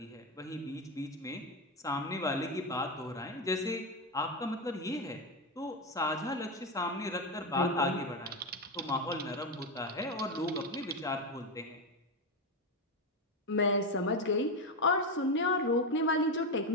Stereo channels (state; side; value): normal; both; correlation 0.12